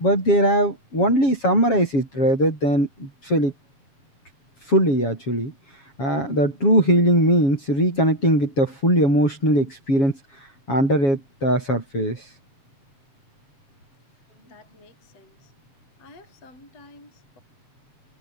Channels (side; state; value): right; late; 7.3 ms